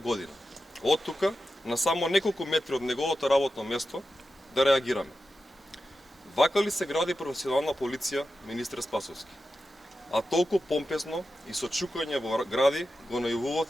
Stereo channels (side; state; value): both; normal; correlation 0.91